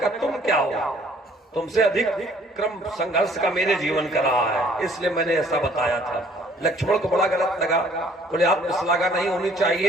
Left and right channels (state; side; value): normal; both; correlation 0.59